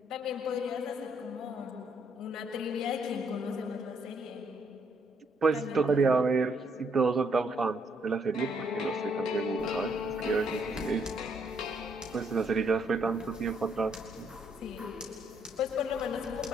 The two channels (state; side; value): normal; both; correlation 0.71